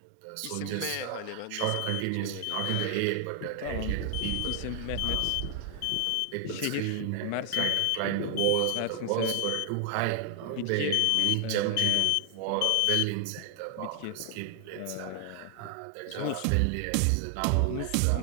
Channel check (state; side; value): different; both; correlation 0.00